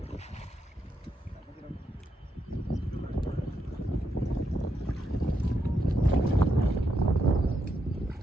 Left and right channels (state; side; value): normal; both; correlation 0.81